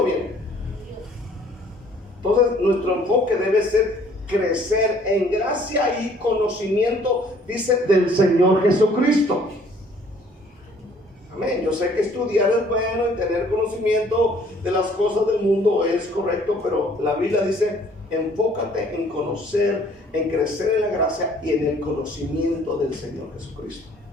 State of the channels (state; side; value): normal; both; correlation 0.58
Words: viene. Entonces nuestro enfoque debe ser crecer en gracia y conocimiento, dice, del Señor Jesucristo. Amén. Yo sé que estudiar es bueno y tener conocimiento de las cosas del mundo es correcto, pero la Biblia dice, enfócate en conocer, en crecer en la gracia y en el conocimiento del Señor Jesucristo.